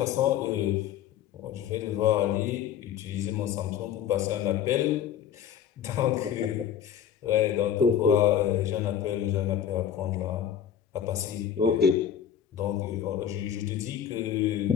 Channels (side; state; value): right; quieter; 9.2 dB